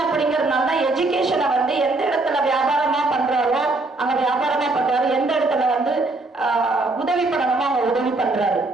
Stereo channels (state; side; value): quieter; left; 3.1 dB